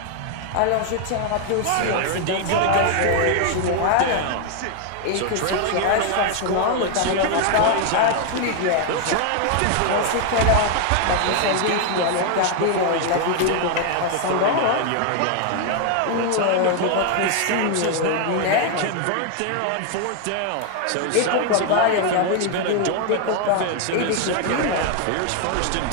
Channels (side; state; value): both; different; correlation 0.00